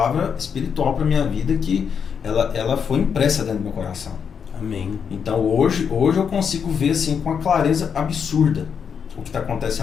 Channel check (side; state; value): right; quieter; 7.0 dB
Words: espiritual para minha vida que ela foi impressa dentro do meu coração. Amém. Então, hoje eu consigo ver assim com uma clareza absurda o que está